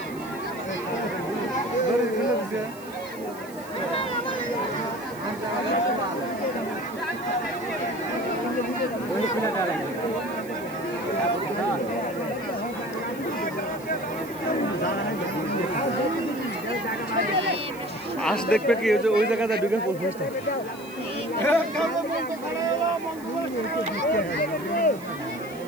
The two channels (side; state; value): right; noise; hiss, 20 dB below the sound